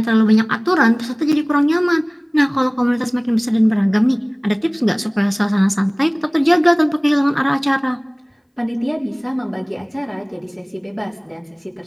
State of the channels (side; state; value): both; identical; correlation 1.00